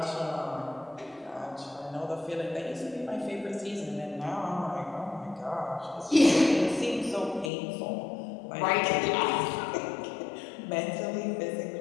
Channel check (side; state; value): right; drops out; at 7.5 s